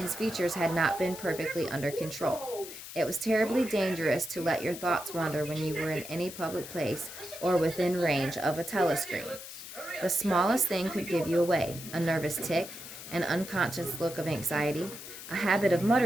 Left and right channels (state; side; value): noise; left; hiss, 12 dB below the sound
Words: features had not been perfectly under control. It was terribly dangerous to let your thoughts wander when you were in any public place or within range of a telescreen. The smallest thing could give you away: a nervous tic, an unconscious look of anxiety, a habit of